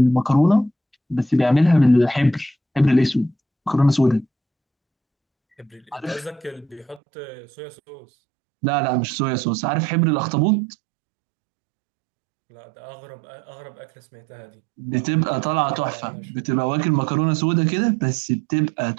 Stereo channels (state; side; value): drops out; left; at 7.0 s